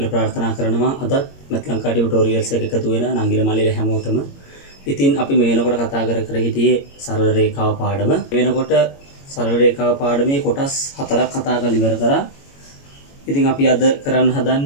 ප්‍රාර්ථනා කරනවා. අද මෙත් ලංකා ටියුටෝරියල්ස් එක එකතු වෙන නංගිල මල්ලිල හැමෝටම. ඉතින් අපි මේ වෙනකොට කතා කර හිටියේ සරල රේඛාව පාඩම. මේ වෙනකොට සරල රේඛාව පාඩමේ කොටස් 4ක් කතා කරලා ඉවර කරා. ඉතින් අපි අද කරන්න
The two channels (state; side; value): late; right; 21 ms